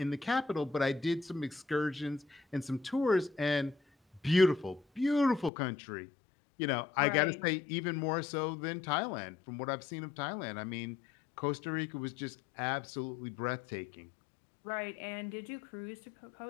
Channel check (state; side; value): drops out; right; at 5.5 s